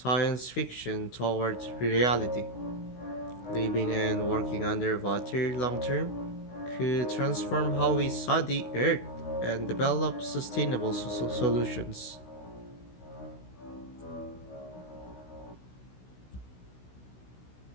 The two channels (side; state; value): right; late; 16 ms